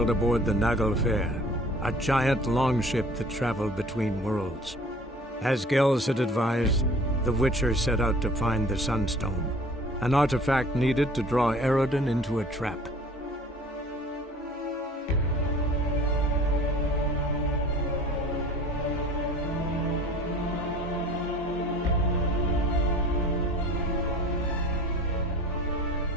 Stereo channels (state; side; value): normal; both; correlation 0.47